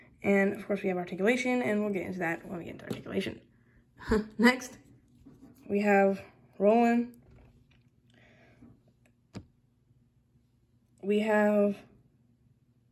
And of course we have articulation, and we'll get into that when we get into articulation. Next, we have Roland. We have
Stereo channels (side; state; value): both; identical; correlation 1.00